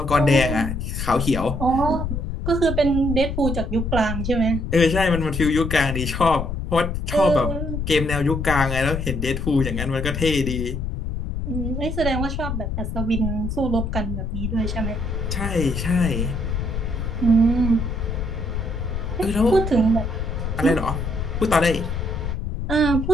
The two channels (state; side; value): noise; left; rumble, 3 dB below the sound